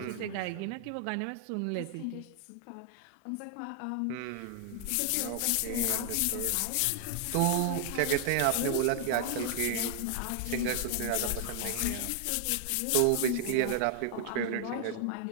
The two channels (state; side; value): different; both; correlation 0.00